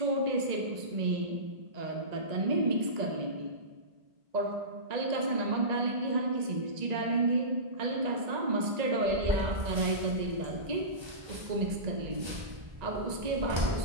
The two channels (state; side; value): late; left; 1.9 ms